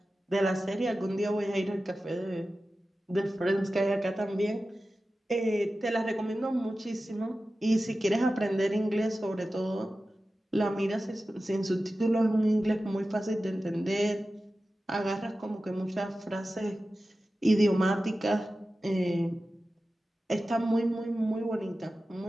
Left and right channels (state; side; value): normal; both; correlation 0.94